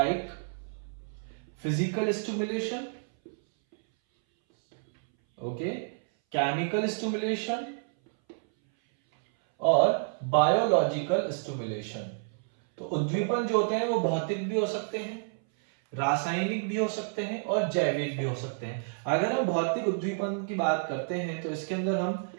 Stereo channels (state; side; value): silent; left; 58 dB below the other